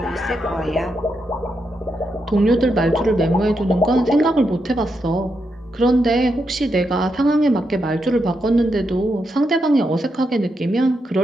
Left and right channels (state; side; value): normal; both; correlation 0.83